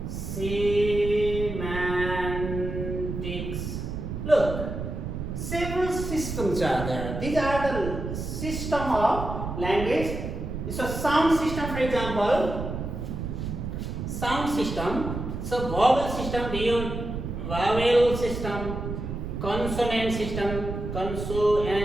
semantics. Look, several systems are there. These are the system of language. So sound system, for example, sound system. So vowel system, vowel system, consonant system,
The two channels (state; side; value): noise; right; rumble, 5 dB below the sound